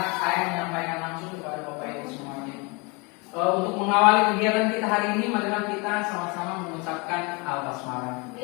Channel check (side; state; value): right; quieter; 29.1 dB